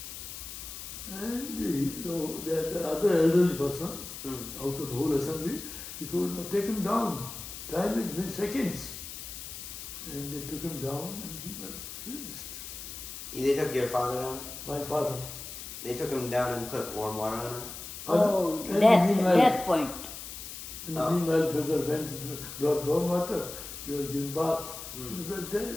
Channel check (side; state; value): left; noise; hiss, 10 dB below the sound